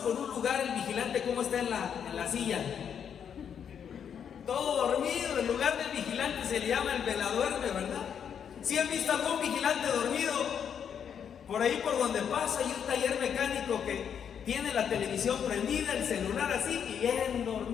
un lugar, el vigilante, ¿cómo está en la silla? Todo dormido. El lugar del vigilante se le llama el veladuerme, ¿verdad? ¿Sí han visto algún vigilante dormido? Por ahí por donde pasa hay un taller mecánico que tiene la televisión prendida, el celular así y bien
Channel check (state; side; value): quieter; right; 8.0 dB